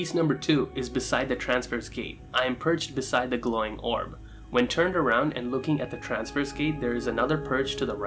number 2 is beside the transverse gate. I am perched beside the glowing orb. When turned around and looking at the transverse gate, there is another perch to the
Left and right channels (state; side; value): identical; both; correlation 1.00